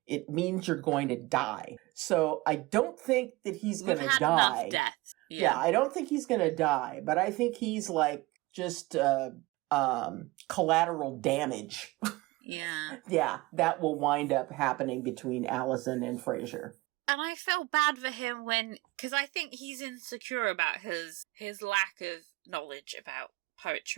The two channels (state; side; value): quieter; left; 20.9 dB